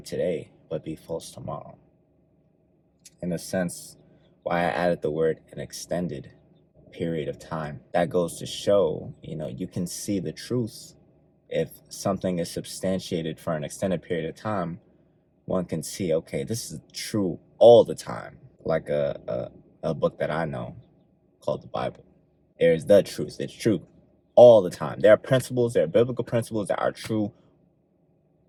today, but be false tomorrow. In a sense, why I added the word an extended period of time. That goes to show, you can see the truth. If something is substantiated for an extended period of time, one can see, okay, this is true all the time. Like a book that I know called the Bible. There's the truth. It's true all the time. There are biblical principles that are true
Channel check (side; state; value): both; identical; correlation 1.00